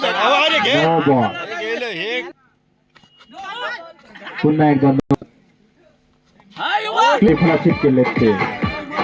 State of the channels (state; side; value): identical; both; correlation 1.00